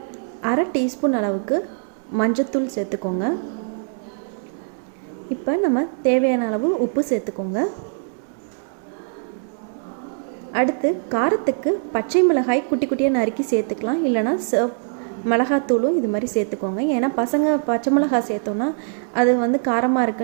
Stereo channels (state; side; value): silent; left; digital silence